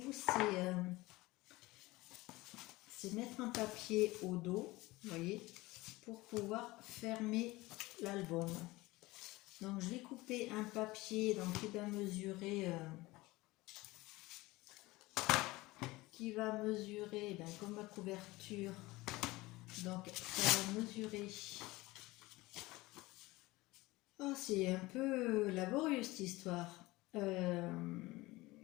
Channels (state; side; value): quieter; right; 20.5 dB